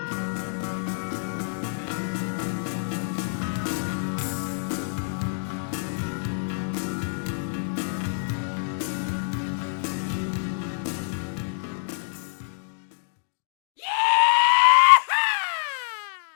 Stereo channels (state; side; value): silent; right; digital silence